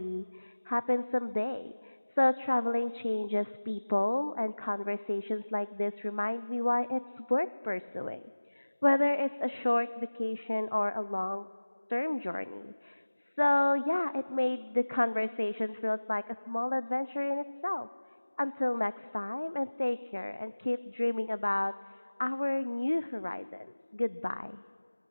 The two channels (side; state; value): both; inverted; correlation -1.00